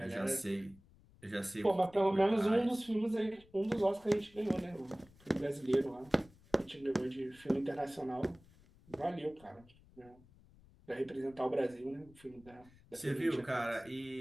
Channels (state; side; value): noise; left; rumble, 26 dB below the sound